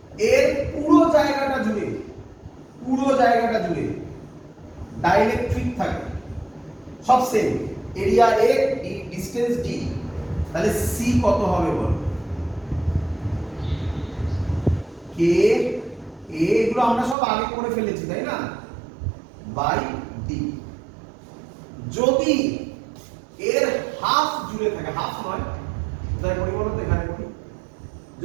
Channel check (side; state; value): left; drops out; at 17.2 s